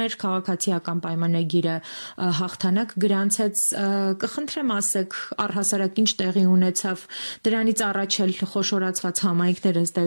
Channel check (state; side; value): inverted; both; correlation -1.00